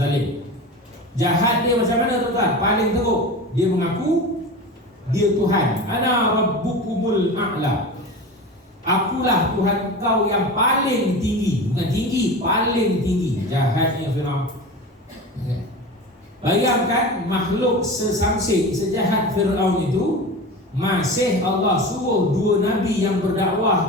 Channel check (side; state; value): both; normal; correlation 0.30